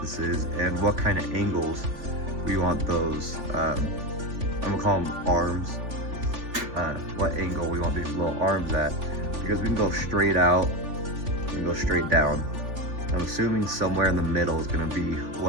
this is and what kind of angles we want those, I'm gonna call them arms, what angle we want these little arms at, because we can go straight out, we can go straight down. I'm assuming somewhere in the middle is gonna be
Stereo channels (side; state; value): left; late; 3.4 ms